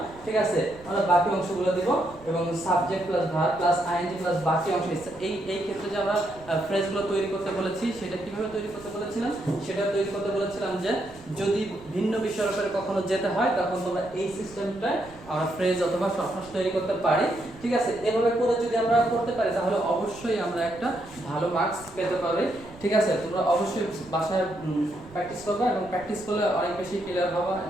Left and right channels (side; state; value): right; noise; rumble, 22 dB below the sound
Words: ঠিক আছে। আমরা বাকি অংশগুলো দেব, এবং subject plus verb plus ING plus বাকি অংশ। এই ক্ষেত্রে যে আমরা ফ্রেজগুলো তৈরি করতে বলেছি সেটা কিভাবে তৈরি করতে বলেছিলাম, সেটা তৈরি করতে বলেছিলাম যে যদি ভিন্ন বিষয়ের উপরে কখনো যেতে হয় তখন তোমরা এই সিস্টেমটায় আমরা ফ্রেজ অথবা শর্টকাট তৈরি করতে পারি, ঠিক আছে। এভাবে করে যদি আমরা করতে পারি তাহলে অবশ্যই আমরা একটা ভালো মার্কস পেতে পারি, ঠিক আছে। তোমরা অবশ্যই বাসায় প্র্যাকটিস করবে, এবং প্র্যাকটিস করলে অনেক বেশি ক্লিয়ার হবে,